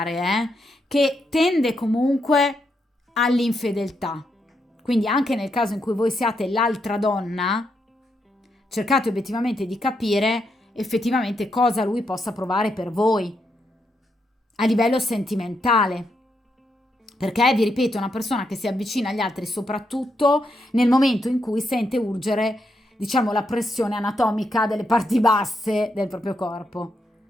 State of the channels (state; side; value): normal; both; correlation 0.81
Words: che tende comunque all'infedeltà. Quindi anche nel caso in cui voi siate l'altra donna, cercate obiettivamente di capire effettivamente cosa lui possa provare per voi a livello sentimentale. Perché, vi ripeto, è una persona che si avvicina agli altri soprattutto nel momento in cui sente urgere, diciamo, la pressione anatomica delle parti basse del proprio corpo.